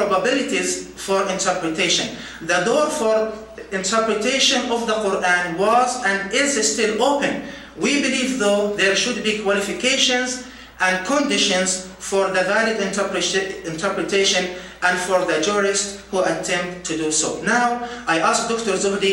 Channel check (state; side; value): identical; both; correlation 1.00